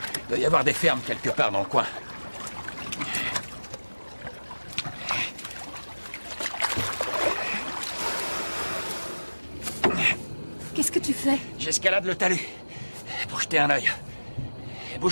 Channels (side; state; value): both; inverted; correlation -1.00